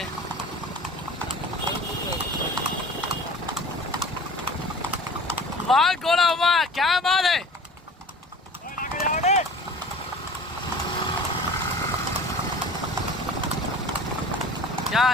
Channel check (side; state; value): both; normal; correlation 0.41